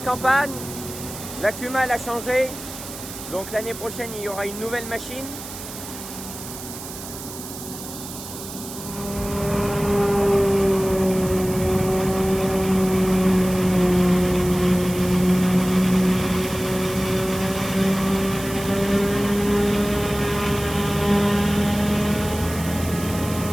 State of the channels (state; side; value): noise; right; hiss, 12 dB below the sound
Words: campagne. La Cuma elle a changé, donc l'année prochaine il y aura une nouvelle machine.